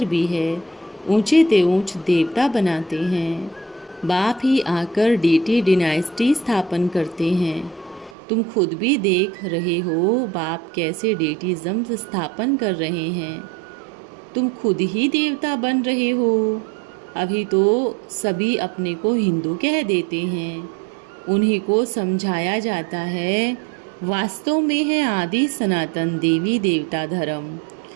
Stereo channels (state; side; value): drops out; left; at 8.2 s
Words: भी है, ऊंचे ते ऊंच देवता बनाते हैं। बाप ही आकर डीटी डिनाइस्टी स्थापन करते हैं। तुम खुद भी देख रहे हो बाप कैसे डेटिज्म स्थापन कर रहे हैं। तुम खुद ही देवता बन रहे हो। अभी तो सभी अपने को हिंदू कह देते हैं। उन्हीं को समझाया जाता है वास्तव में है आदि सनातन देवी देवता धर्म,